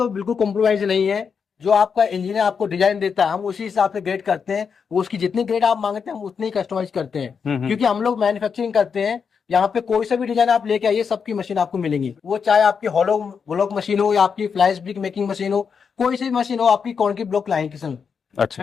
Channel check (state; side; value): quieter; right; 6.2 dB